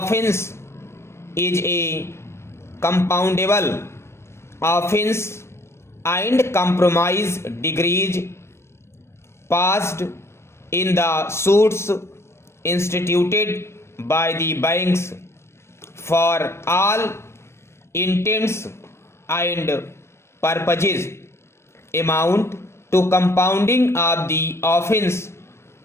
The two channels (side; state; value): right; late; 0.13 ms